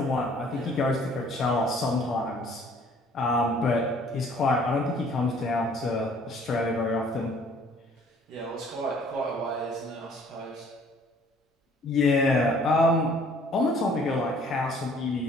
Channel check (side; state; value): both; normal; correlation 0.57